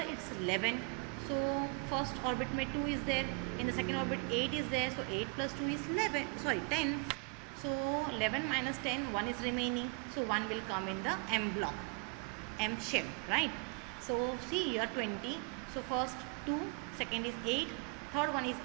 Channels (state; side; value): quieter; left; 33.2 dB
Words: it's 11. So first orbit में 2 is there, in the second orbit 8 is there, so 8 plus 2 is 10. So 11 minus 10, 1 is remaining, so 1 will come in the M block, M shell, right? So see here 20, so first 2, second is 8, third one is